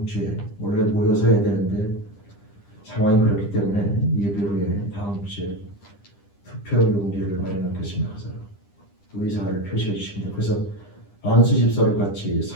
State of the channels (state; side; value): late; right; 9.9 ms